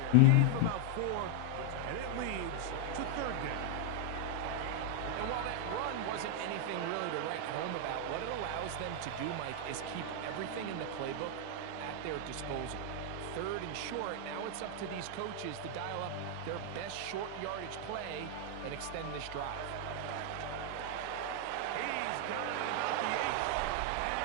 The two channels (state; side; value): different; both; correlation 0.00